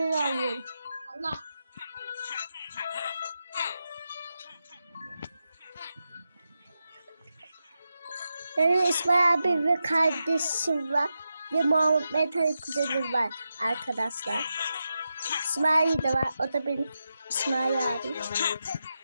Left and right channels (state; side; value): inverted; both; correlation -0.88